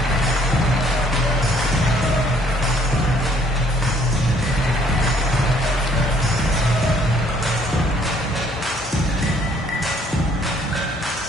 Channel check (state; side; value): normal; both; correlation 0.63